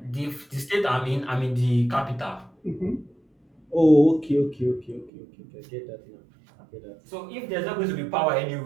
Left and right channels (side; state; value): left; drops out; at 5.1 s